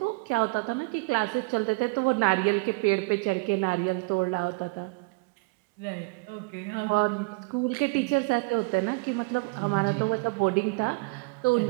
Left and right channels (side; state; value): left; quieter; 28.4 dB